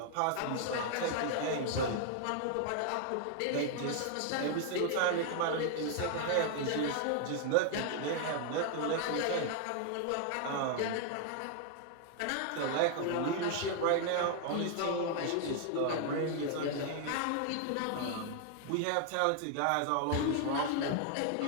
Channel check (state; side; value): different; both; correlation 0.00